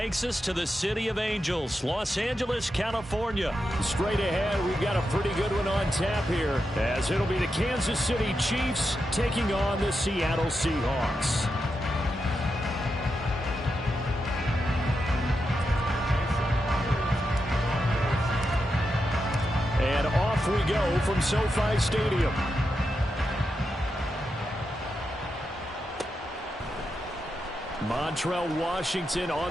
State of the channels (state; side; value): normal; both; correlation 0.87